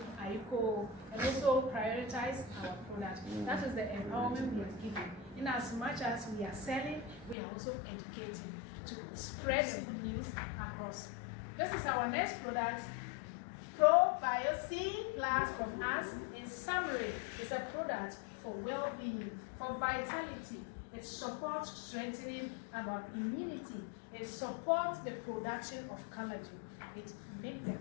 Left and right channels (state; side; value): drops out; right; at 7.4 s